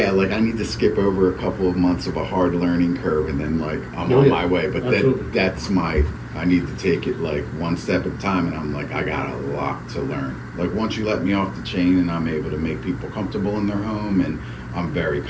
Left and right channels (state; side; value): identical; both; correlation 1.00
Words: I need to skip over a couple of months of a hard learning curve, and then like I'm on my way. But Absolutely. I need to take it like one step at a time, and I'm like, I got a lot to learn. Like, once you let me off the chain and I'm able to make people comfortable in their home, and I'm very